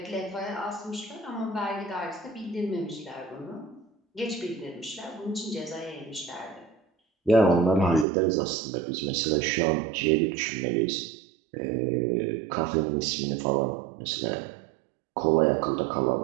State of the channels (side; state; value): left; drops out; at 8.1 s